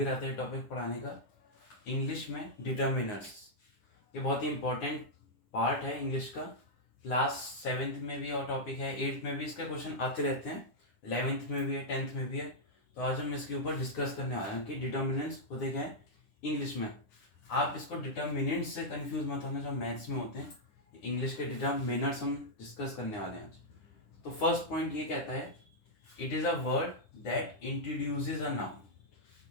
रहा था ये टॉपिक पढ़ाने का इंग्लिश में डिटर्मिनर्स। ये बहुत ही इम्पोर्टेंट पार्ट है इंग्लिश का। क्लास 7th में भी और टॉपिक है, 8th में भी इसका क्वेश्चन आते रहते हैं, 11th में भी है, 10th में भी है। तो आज हम इसके ऊपर डिस्कस करने वाले हैं कि डिटर्मिनेंट्स होते क्या हैं इंग्लिश में। आप इसको डिटर्मिनेंट से कंफ्यूज मत होना जो मैथ्स में होते हैं। इंग्लिश के डिटर्मिनर्स हम डिस्कस करने वाले हैं आज। तो फर्स्ट पॉइंट ये कहता है it is a word that introduces a noun.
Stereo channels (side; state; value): right; late; 9.9 ms